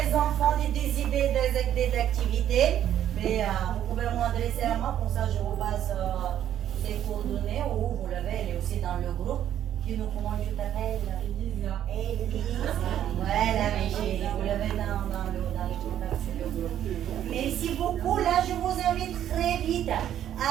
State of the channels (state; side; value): quieter; left; 10.8 dB